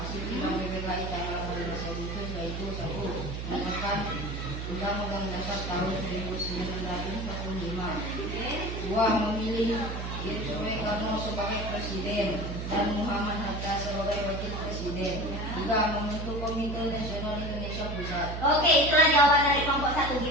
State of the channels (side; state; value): right; noise; hum, 5 dB below the sound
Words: Hasil sidang PPKI tanggal 18 Agustus yaitu 1. Menekan Undang-Undang Dasar tahun 1945. 2. Memilih Soekarno sebagai presiden dan Muhammad Hatta sebagai wakil presiden. 3. Membentuk Komite Nasional Indonesia Pusat. Oke, itulah jawaban dari kelompok 1.